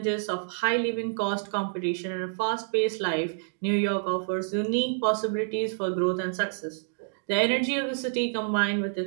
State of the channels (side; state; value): left; silent; digital silence